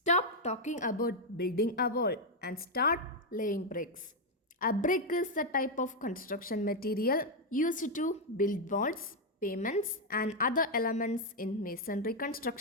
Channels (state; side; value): normal; both; correlation 0.01